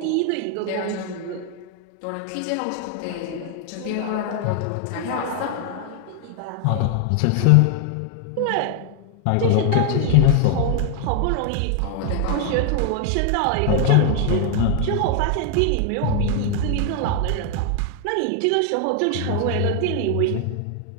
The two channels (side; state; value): both; different; correlation 0.00